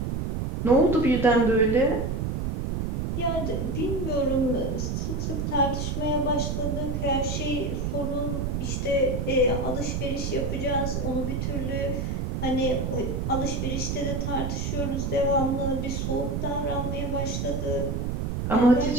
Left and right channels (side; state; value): right; noise; rumble, 1 dB below the sound